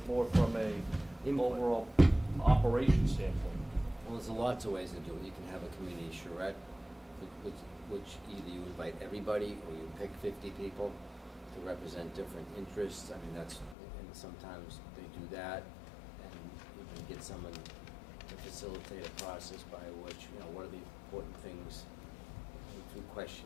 more from a Input. overall operation standpoint. Well, there's lots of ways to do it. You can have a community charrette, which either you invite everybody or you pick 50 people to represent different interests. I mean, and sometimes they do that, and you can get someone to facilitate a process by which, what are the important things through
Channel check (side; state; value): right; drops out; at 13.8 s